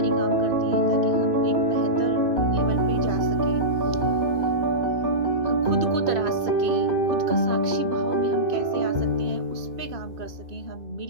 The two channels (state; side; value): late; left; 2.6 ms